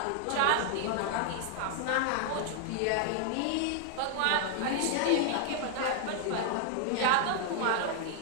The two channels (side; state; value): both; different; correlation 0.00